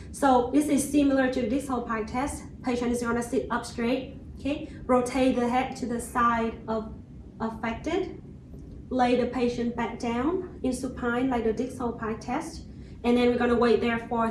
So this is similar to this whole pie test. Patient is gonna sit up straight, okay? Rotate the head to the side of affected. Lay the patient back down in supine like the Dix-Hall pie test. And then we're gonna wait there for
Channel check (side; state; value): both; identical; correlation 1.00